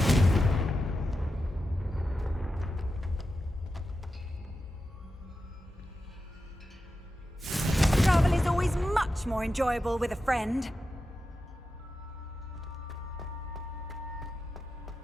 Travel is always much more enjoyable with a friend.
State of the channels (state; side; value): normal; both; correlation 0.90